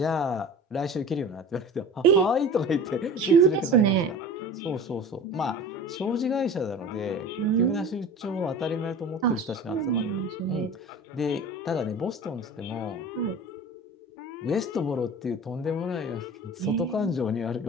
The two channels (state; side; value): normal; both; correlation 0.37